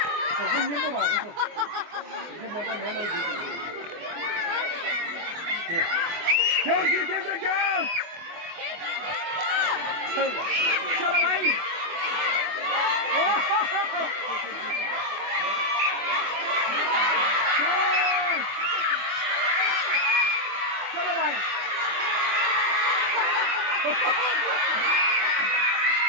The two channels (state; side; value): late; left; 24 ms